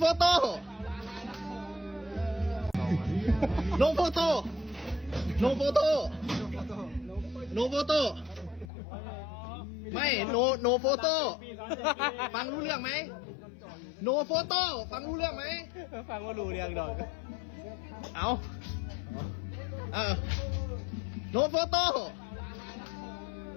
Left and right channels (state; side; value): drops out; right; at 8.7 s